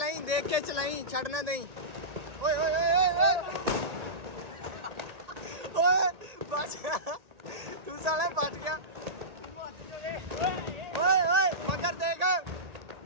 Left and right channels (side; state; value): left; late; 1.8 ms